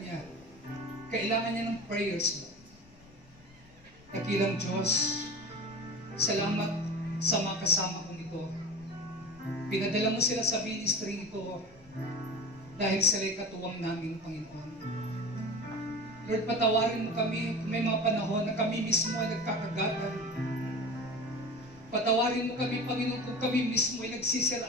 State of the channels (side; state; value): left; noise; rumble, 25 dB below the sound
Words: Kailangan niya ng prayers mo. Dakilang Diyos, salamat sa mga kasama kong ito. Pinadala mo sila sa ministry ito dahil sila'y katuwang namin, Panginoon. Lord, patawarin mo kami kung may mga panahon na kami mismo ay nagkakagatan. Patawarin mo kami, Panginoon, kung kami mismo ay